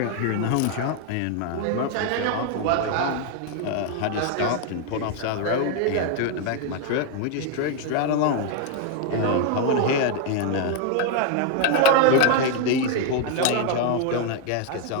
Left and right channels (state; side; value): different; both; correlation 0.00